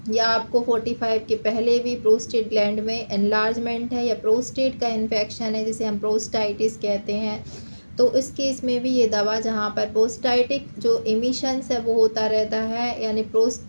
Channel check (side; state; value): both; inverted; correlation -1.00